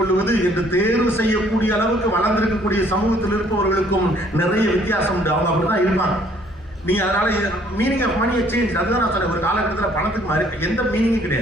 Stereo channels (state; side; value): normal; both; correlation 0.61